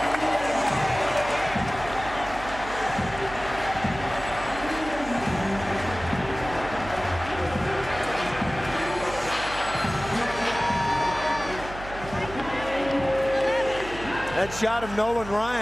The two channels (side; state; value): right; noise; hum, 12 dB below the sound